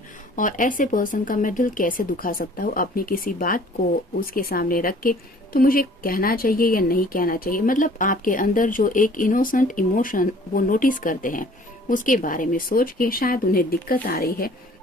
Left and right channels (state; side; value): normal; both; correlation 0.53